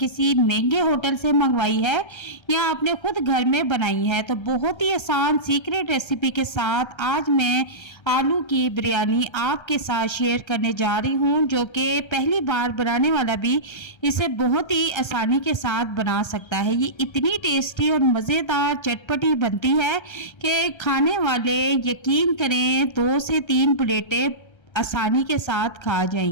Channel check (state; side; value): late; right; 1.3 ms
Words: महंगे होटल से मंगवाई है या आपने खुद घर में बनाई है। तो बहुत ही आसान सीक्रेट रेसिपी के साथ आज मैं आलू की बिरयानी आपके साथ शेयर करने जा रही हूँ, जो कि पहली बार बनाने वाला भी इसे बहुत ही आसानी के साथ बना सकता है। ये इतनी टेस्टी और मज़ेदार चटपटी बनती है कि खाने वाले यकीन करें 2 से 3 प्लेटें आसानी के साथ खा